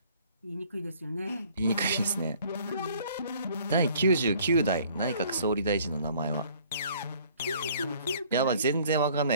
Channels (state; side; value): inverted; both; correlation -0.57